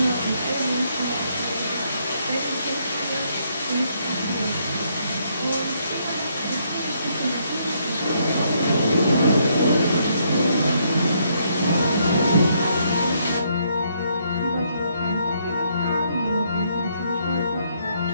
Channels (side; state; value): both; inverted; correlation -0.72